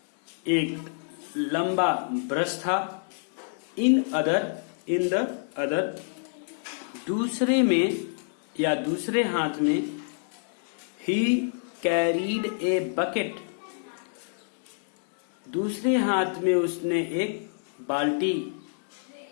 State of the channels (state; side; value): silent; right; 60 dB below the other